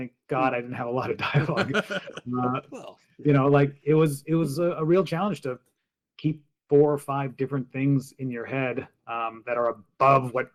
God I didn't have a lot of dialogue. It was a real challenge to keep 4 or 5 different things in your head that are above what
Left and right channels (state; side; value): identical; both; correlation 1.00